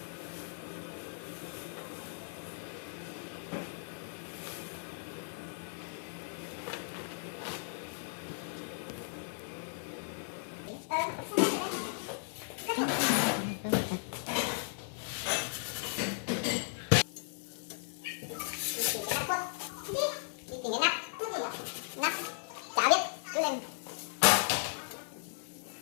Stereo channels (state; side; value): silent; right; digital silence